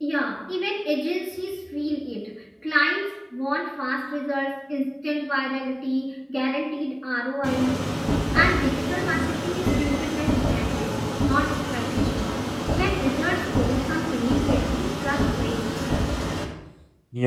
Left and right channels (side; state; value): both; identical; correlation 1.00